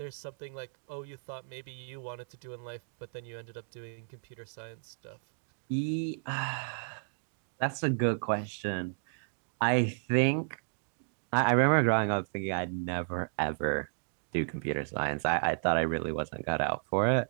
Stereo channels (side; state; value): left; silent; digital silence